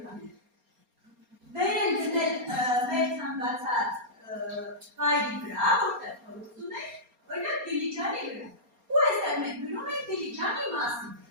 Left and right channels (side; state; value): left; late; 4.3 ms